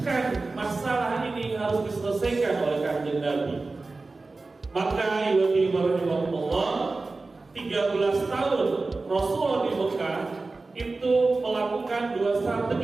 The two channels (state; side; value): quieter; left; 3.6 dB